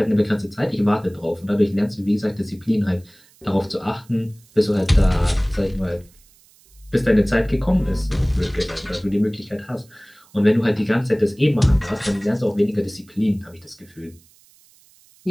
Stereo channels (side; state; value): right; noise; hiss, 29 dB below the sound